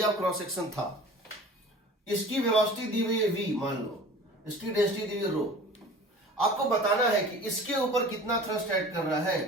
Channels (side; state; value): both; normal; correlation 0.43